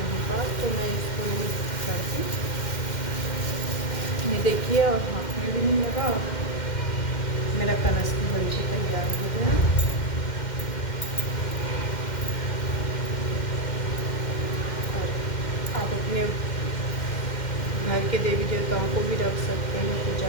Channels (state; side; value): late; right; 2.1 ms